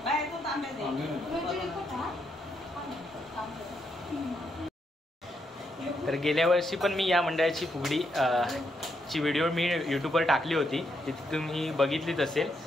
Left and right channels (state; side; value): normal; both; correlation 0.79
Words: तर गेल्या वर्षी पण मी या मंडळाची फुगडी ची व्हिडिओ मी यूट्यूबवर टाकली होती. तिथे तुम्ही बघितलीच असेल.